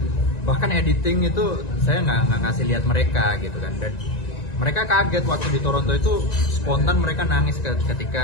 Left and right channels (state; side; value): late; right; 1.9 ms